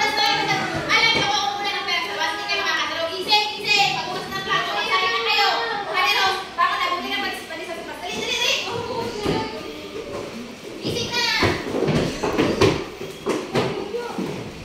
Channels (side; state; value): both; identical; correlation 1.00